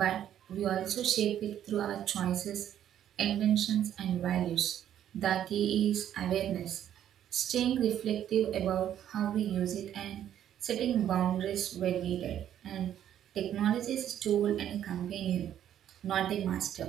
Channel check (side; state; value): left; quieter; 10.6 dB